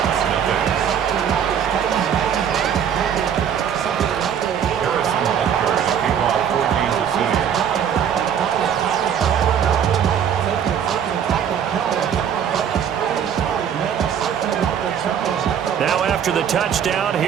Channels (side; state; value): left; quieter; 8.5 dB